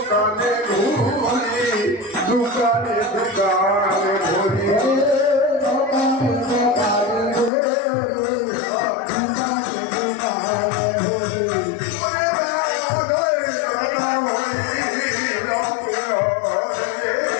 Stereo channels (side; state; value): right; drops out; at 7.5 s